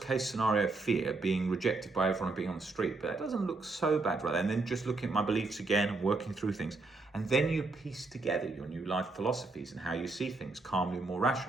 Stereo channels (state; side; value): quieter; left; 3.5 dB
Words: case scenario fear, being rejected by everyone and being on the street, but that doesn't look so bad, right? And then just looking at my beliefs again and working through things. And then you piece together your new life philosophies and how you see things calmly, more